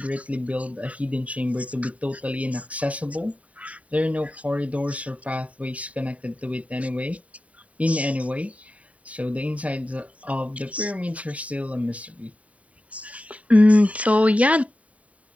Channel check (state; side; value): late; left; 0.067 ms